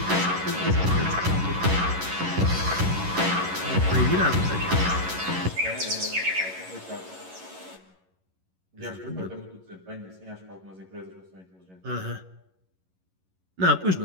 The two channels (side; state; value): left; late; 11 ms